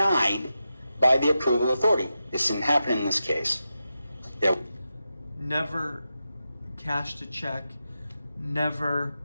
by the approval authority. This didn't happen in this case. Never cashed a check, never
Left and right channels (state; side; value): inverted; both; correlation -0.90